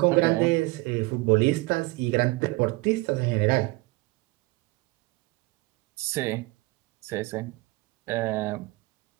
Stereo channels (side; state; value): left; quieter; 22.9 dB